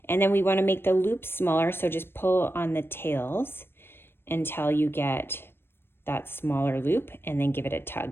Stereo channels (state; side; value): late; right; 0.11 ms